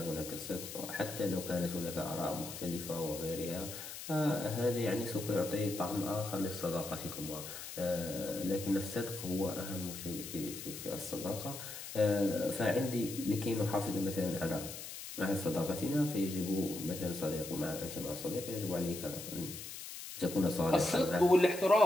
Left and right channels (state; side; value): noise; left; hiss, 10 dB below the sound